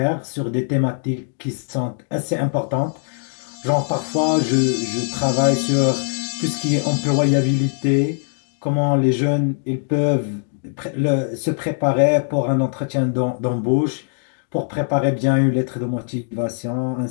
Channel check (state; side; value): silent; right; digital silence